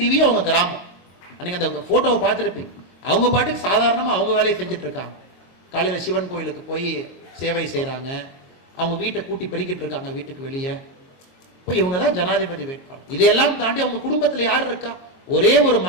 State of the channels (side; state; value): right; late; 22 ms